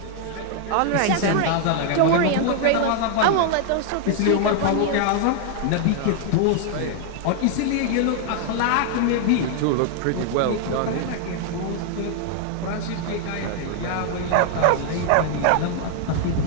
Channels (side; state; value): both; different; correlation 0.00